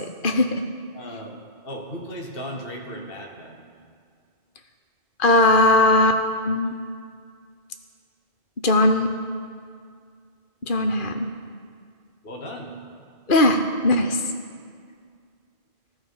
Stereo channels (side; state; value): right; late; 2.4 ms